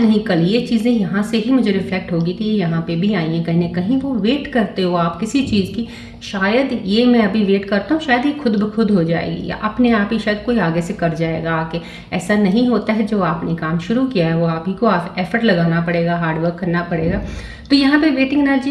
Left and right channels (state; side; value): identical; both; correlation 1.00